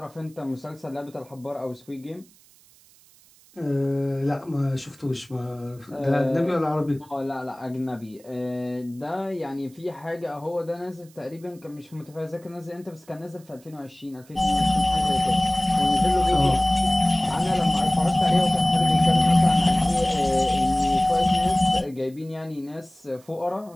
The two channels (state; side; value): noise; right; hiss, 28 dB below the sound